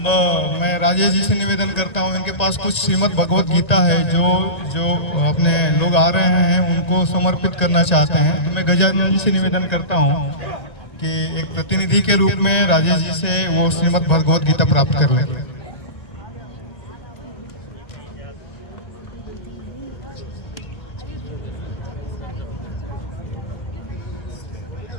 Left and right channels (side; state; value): right; late; 1.9 ms